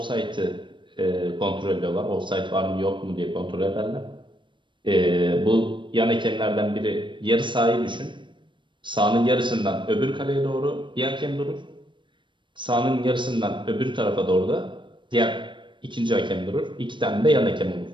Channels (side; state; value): left; late; 0.23 ms